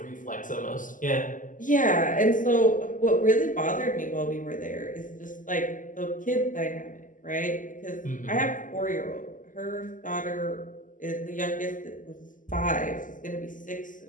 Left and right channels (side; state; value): right; late; 0.38 ms